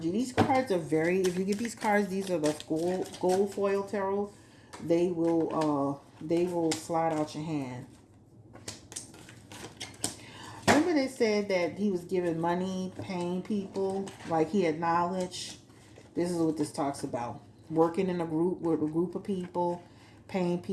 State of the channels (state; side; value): identical; both; correlation 1.00